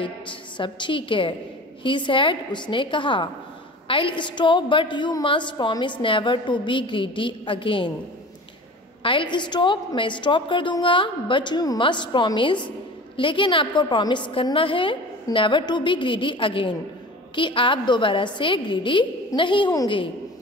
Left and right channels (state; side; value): normal; both; correlation 0.38